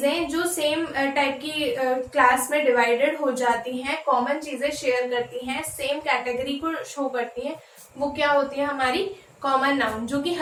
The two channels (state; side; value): identical; both; correlation 1.00